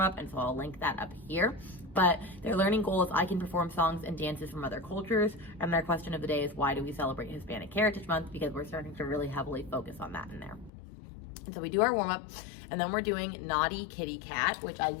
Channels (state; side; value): drops out; right; at 10.7 s